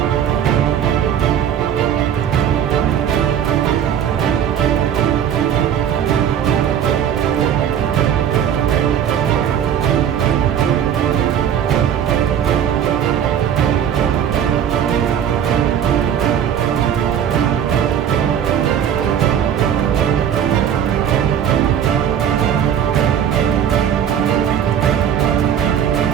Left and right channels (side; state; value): left; quieter; 9.1 dB